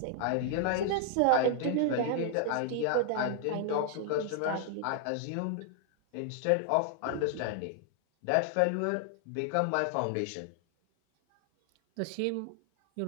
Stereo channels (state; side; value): different; both; correlation 0.00